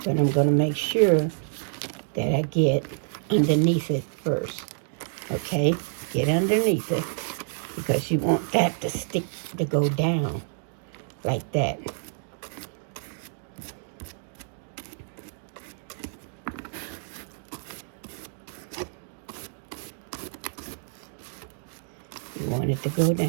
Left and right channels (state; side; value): silent; left; digital silence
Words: But I'm going to make sure that I get underneath it first. Okay? Get underneath it. Because you want that to stick, to go down. Like that. You want it to go